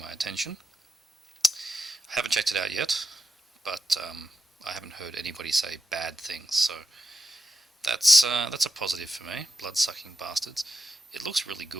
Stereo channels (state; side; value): normal; both; correlation 0.88